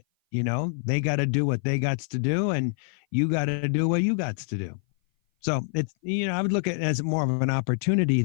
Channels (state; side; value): silent; right; 57 dB below the other